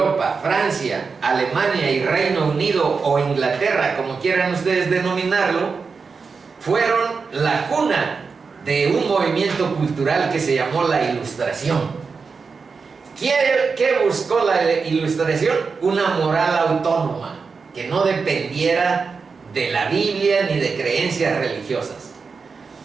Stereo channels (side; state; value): left; quieter; 5.0 dB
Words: Francia, Alemania y Reino Unido, o Inglaterra, como quieran ustedes denominarlo, fueron la cuna de un movimiento cultural que se llamó la Ilustración. ¿Qué buscó la Ilustración? Una moral autónoma, que no dependiera de la Biblia ni de creencias religiosas,